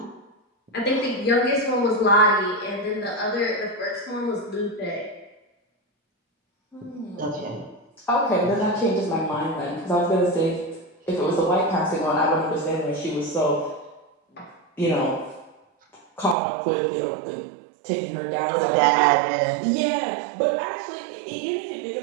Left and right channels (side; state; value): left; drops out; at 16.4 s